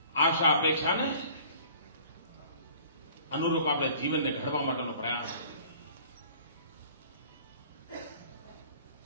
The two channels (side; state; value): both; inverted; correlation -0.50